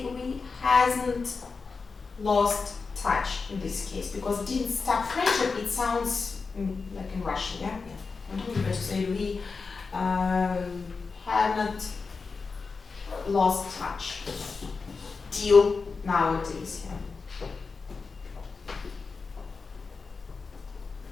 we hasn't lost touch in this case, because didn't stop friendship, it sounds like in Russian, yeah? It's better to say we haven't lost touch till nowadays, yeah?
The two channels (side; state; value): right; quieter; 4.6 dB